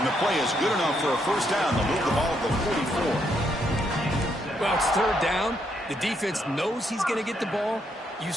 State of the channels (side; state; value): both; normal; correlation 0.75